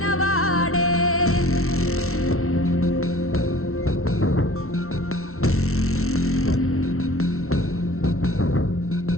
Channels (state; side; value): late; right; 0.63 ms